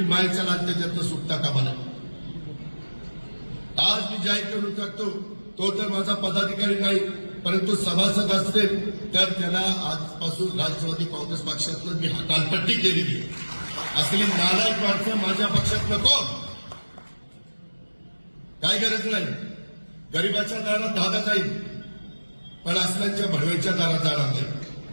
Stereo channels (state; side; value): inverted; both; correlation -1.00